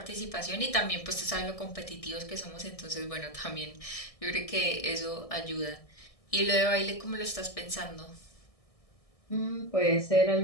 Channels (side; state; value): right; late; 1.6 ms